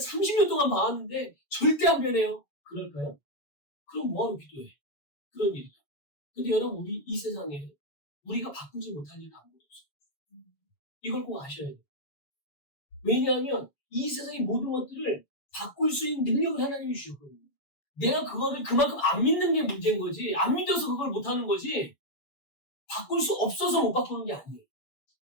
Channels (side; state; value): right; late; 7.1 ms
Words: 동안 봐왔는데 절대 안 변해요. 그럴까요? 그럼 뭐하러 기도해? 그런 일이다. 근데 여러분, 우리 이 세상에 우리가 바꾸지 못할 일은 아무것도 없어요. 이걸 꼭 아셔야 돼요. 왜냐하면 이 세상의 모든 것들을 바꿀 수 있는 능력을 하나님이 주셨거든요. 내가 그거를 그만큼 안 믿는 게 문제인 거지, 안 믿어서 그걸 못하는 거지, 바꿀 수 없어서 못 바꾸는 게 아니에요.